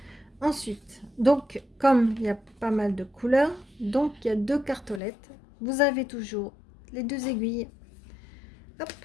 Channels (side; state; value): right; drops out; at 5.0 s